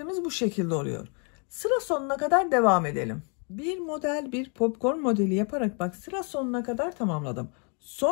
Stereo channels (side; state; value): right; quieter; 38.5 dB